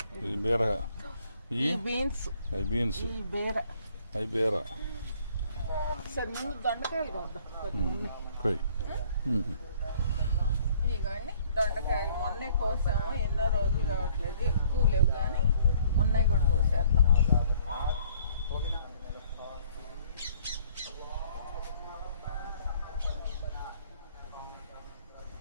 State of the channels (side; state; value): both; inverted; correlation -0.59